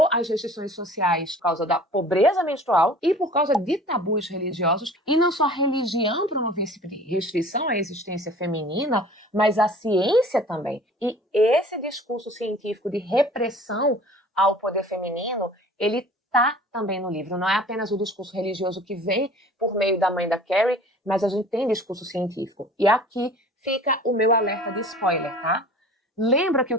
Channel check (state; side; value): normal; both; correlation 0.46